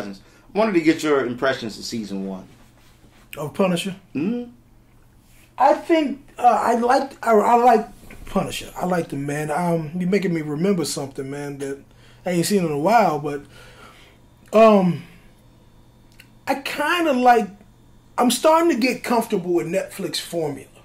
I wanted to get your impressions of season 1. Of Punisher? Mm-hmm. I think I like Punisher. I like the man. You're making me remember something, man, that I ain't seen in a while, but I kind of like, I'm starting to get comfortable with Netflix formula,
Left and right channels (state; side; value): identical; both; correlation 1.00